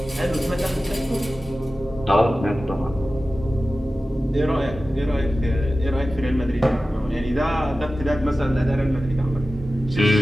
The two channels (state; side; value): normal; both; correlation 0.95